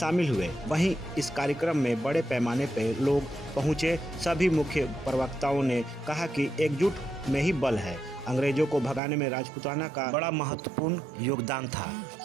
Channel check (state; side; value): drops out; left; at 9.0 s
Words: हुए। वहीं इस कार्यक्रम में बड़े पैमाने पर लोग पहुंचे। सभी मुख्य प्रवक्ताओं ने कहा कि एकजुट में ही बल है। अंग्रेजों को भगाने में राजपूताना का बड़ा महत्वपूर्ण योगदान था।